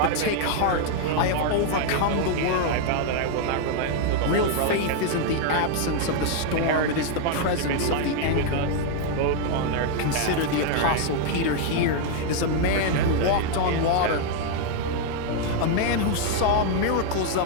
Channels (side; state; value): both; different; correlation 0.00